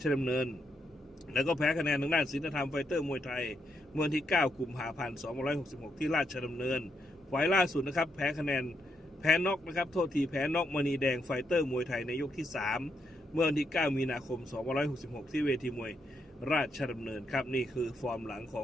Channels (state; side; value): normal; both; correlation 0.79